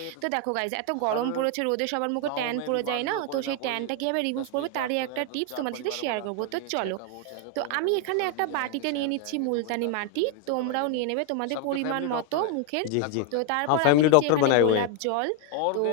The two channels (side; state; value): both; different; correlation 0.00